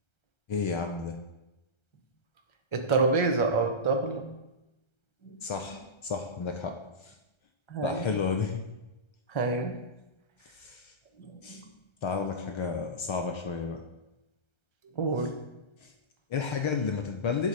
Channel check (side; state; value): right; late; 1.3 ms